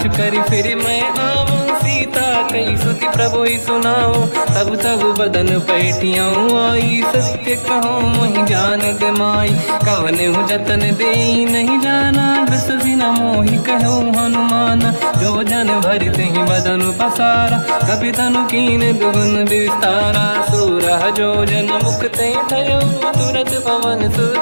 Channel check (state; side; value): inverted; both; correlation -1.00